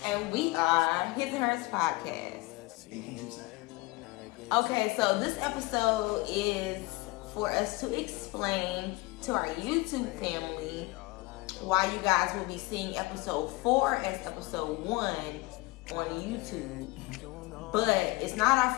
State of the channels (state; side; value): quieter; right; 22.8 dB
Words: And we are His and Hers Podcast. Okay, so this episode is for us to explain to our YouTube family why you guys will be seeing episode 4 as episode 1 on YouTube. But it's not our